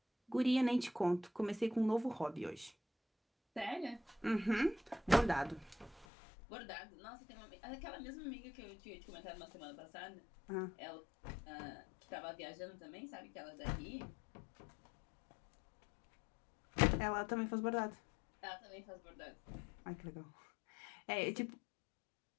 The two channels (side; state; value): right; drops out; at 6.1 s